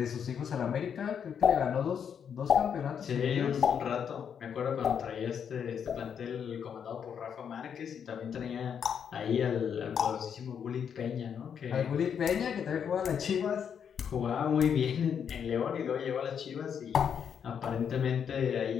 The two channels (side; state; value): right; quieter; 7.7 dB